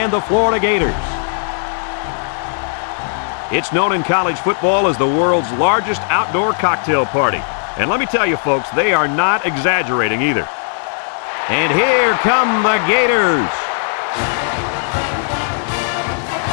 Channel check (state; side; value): silent; right; 55 dB below the other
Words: the Florida Gators. It's known in college football as the world's largest outdoor cocktail party. And let me tell you, folks, they are not exaggerating either. And here come the Gators.